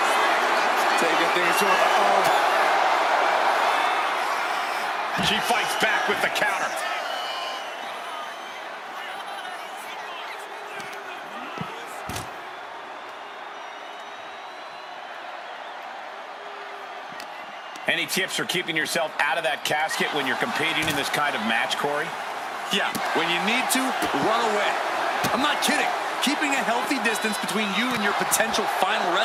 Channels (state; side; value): identical; both; correlation 1.00